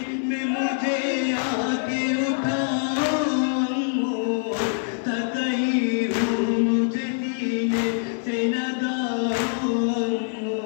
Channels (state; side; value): silent; right; 58 dB below the other